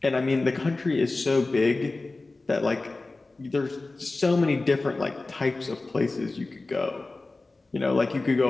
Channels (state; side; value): quieter; right; 3.3 dB